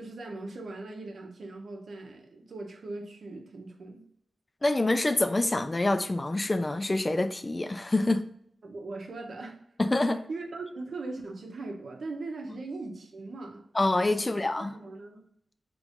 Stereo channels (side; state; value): both; normal; correlation 0.97